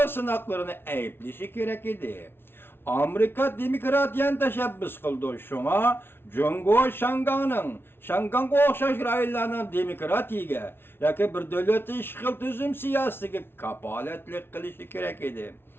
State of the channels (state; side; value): late; right; 0.11 ms